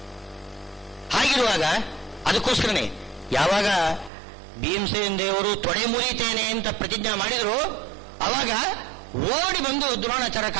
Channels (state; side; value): drops out; left; at 4.1 s